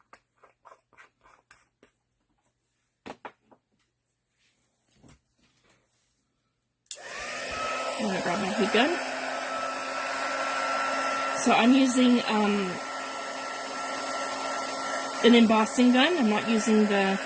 I'm going to grab my heat gun. So I'm using an embossing gun. I'm not using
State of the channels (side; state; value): both; identical; correlation 1.00